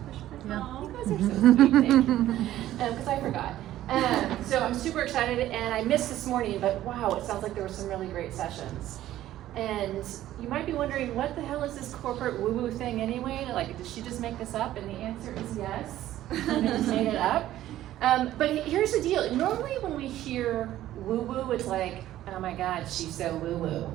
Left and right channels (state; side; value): quieter; left; 13.6 dB